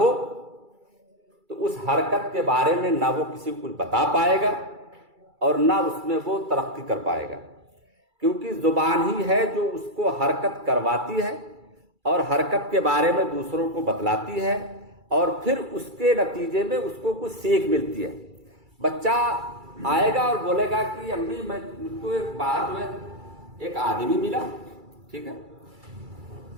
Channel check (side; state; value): left; late; 2.3 ms